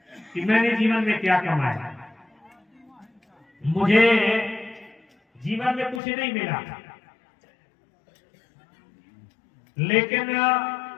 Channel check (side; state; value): right; drops out; at 6.0 s